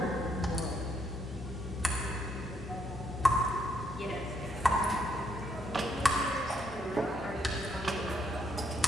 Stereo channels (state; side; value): normal; both; correlation 0.73